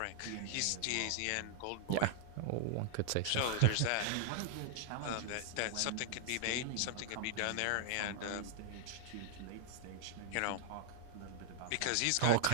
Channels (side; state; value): both; different; correlation -0.01